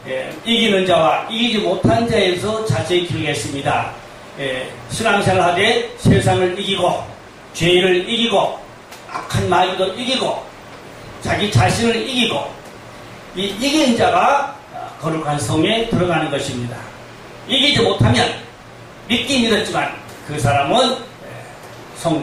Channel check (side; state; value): both; identical; correlation 1.00